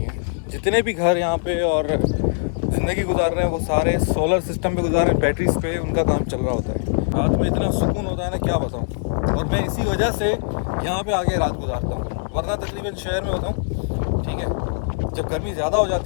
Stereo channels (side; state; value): right; silent; digital silence